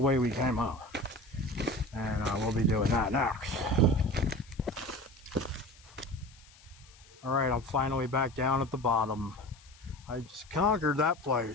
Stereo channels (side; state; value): left; noise; hiss, 25 dB below the sound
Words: we came up. And we'll be doing that next. Alright, I'm finally back down at the bottom. I just conquered that